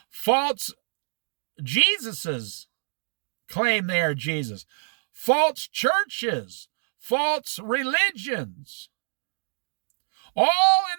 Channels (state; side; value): silent; left; digital silence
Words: False Jesuses claim they are Jesus. False churches, false religions, all